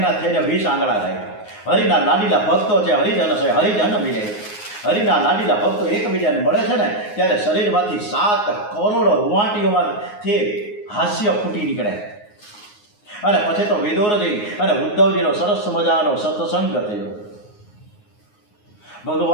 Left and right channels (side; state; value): right; late; 9.6 ms